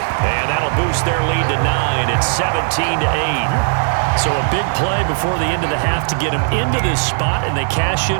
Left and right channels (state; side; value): silent; left; 68 dB below the other